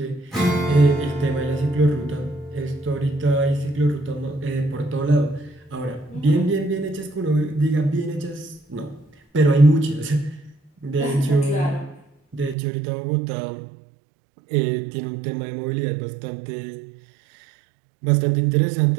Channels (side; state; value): left; drops out; at 12.6 s